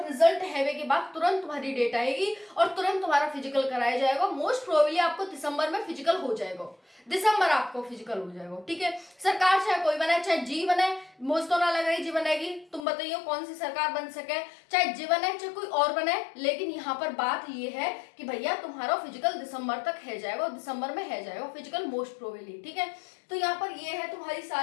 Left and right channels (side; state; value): right; drops out; at 12.9 s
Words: रिजल्ट हैवे के बाद तुरंत तुम्हारी डेट आएगी और तुरंत तुम्हारा फिजिकल कराया जाएगा। मोस्ट प्रोबेबली आपको दिसंबर में फिजिकल हो जाएगा, दिसंबर आपको फिजिकल हो जाएगा। ठीक है, सरकार चाहे कोई बने, चाहे जी बने, मुझे तो ना लग रही जी बनेगी, तुम बताइए कौन सी सरकार बन सके, चाहे जी बने चाहे कोई और बने। लेकिन यहाँ पर बात ये है कि भैया तुम्हारा फिजिकल दिसंबर तक है जाएगा, दिसंबर में है जाएगा फिजिकल मोस्ट प्रोबेबली। ठीक है, तो यहाँ पर ये है तुम्हारी